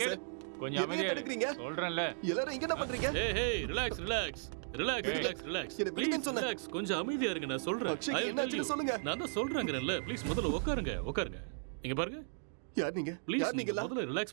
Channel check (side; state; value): left; silent; digital silence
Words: கேளு. சார். கொஞ்சம் எதையும் அமைதியா தடுக்கிறீங்க? இரு. சொல்றேன்ல. எல்லாரும் இங்க என்ன பண்றீங்க? ஏய் relax relax relax relax relax. என்ன விடுங்கன்னு சொன்னேன். ரிலாக்ஸ், கொஞ்சம் அமைதியா இருங்க, நான் சொல்றேன். அக்ஷய், I will என்னாச்சுன்னு tell you. சொல்லுங்க. நான் தான் சொல்றேங்கறேன்ல, ப்ளீஸ் முதல்ல உட்காருங்க உட்காருங்க. இங்க பாருங்க. யார் நீங்க? ப்ளீஸ் யார் நீங்க? முதல்ல